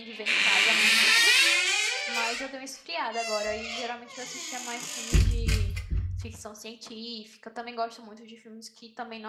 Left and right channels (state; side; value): identical; both; correlation 1.00